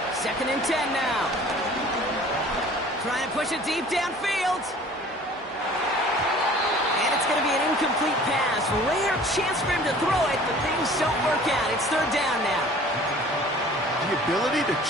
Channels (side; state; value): both; normal; correlation 0.48